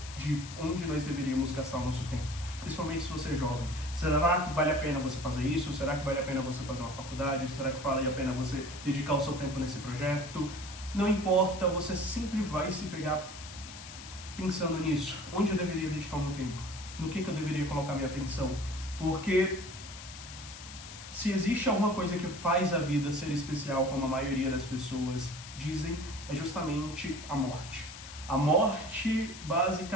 de onde nós deveríamos gastar o nosso tempo. Principalmente se você é jovem. Será que vale a pena você fazer isso? Será que vale a pena você fazer uma faculdade? Será que vale a pena você dedicar o seu tempo nesse projeto? Não importa, você sempre vai se pegar pensando nisso. Onde eu deveria dedicar o meu tempo? No que eu deveria colocar minha atenção? Porque se existe alguma coisa que faz a vida ser especial, como a maioria das pessoas dizem, é justamente a morte. A morte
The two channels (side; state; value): left; noise; hiss, 13 dB below the sound